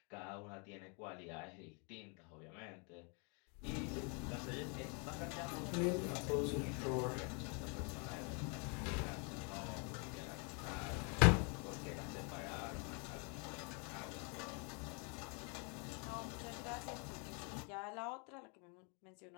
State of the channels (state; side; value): quieter; right; 35.9 dB